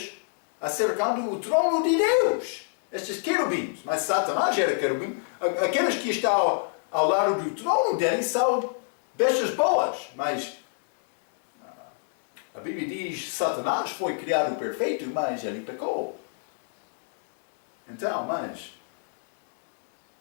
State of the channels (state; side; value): silent; right; 60 dB below the other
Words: acercando o trono de Deus. Estes querubins, mas Satanás era querubim. Aqueles que estão ao lado do trono dele são bestas boas, mas a Bíblia diz que Satanás foi criado perfeito, mas ele pecou. Então, mas